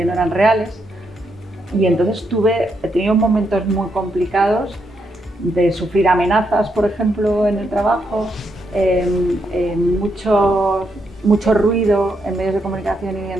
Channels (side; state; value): both; normal; correlation 0.79